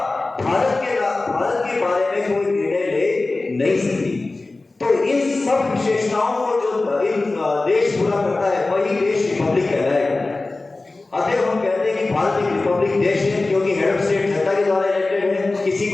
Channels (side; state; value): right; quieter; 3.3 dB